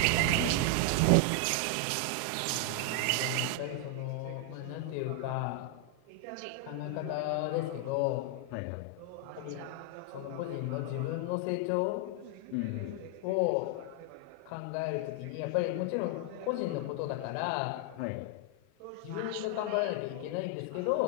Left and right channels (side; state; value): both; different; correlation 0.00